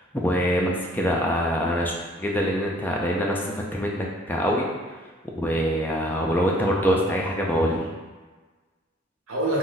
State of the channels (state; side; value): normal; both; correlation 0.57